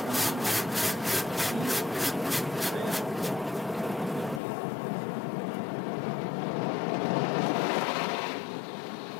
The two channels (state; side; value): drops out; right; at 4.4 s